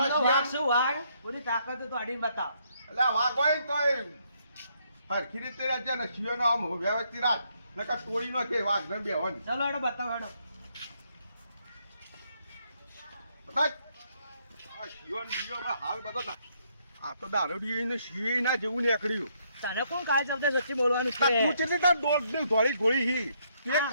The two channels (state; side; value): inverted; both; correlation -0.72